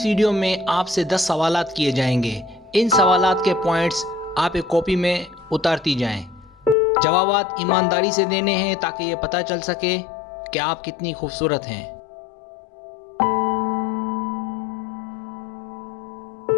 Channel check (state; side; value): drops out; right; at 6.8 s